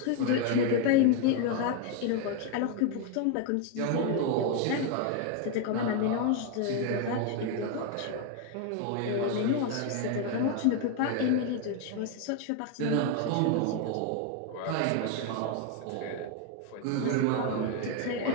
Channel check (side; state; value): both; different; correlation 0.01